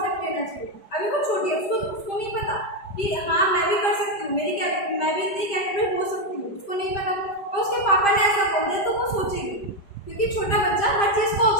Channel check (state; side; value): late; right; 5.0 ms